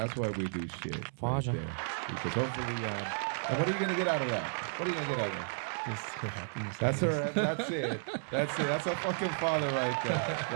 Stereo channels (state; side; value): silent; left; 56 dB below the other